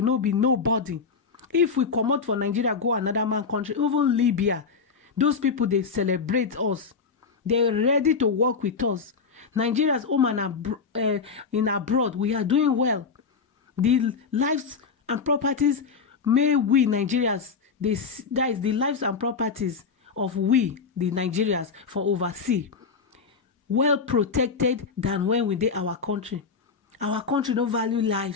no be nobody. If we come out for Nigeria, go another man country, even Libya, those people they celebrate us. They're ready to work with us. Nigeria's home and in abroad, we are doing well. The lives and properties, may we Nigerians, that is the lives and properties of we, the Nigerians, for overseas, well protected than when we did our country. Our country no value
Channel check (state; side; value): quieter; right; 5.2 dB